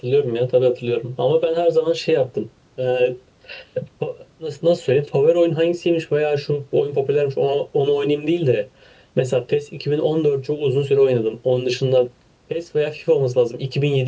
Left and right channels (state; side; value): identical; both; correlation 1.00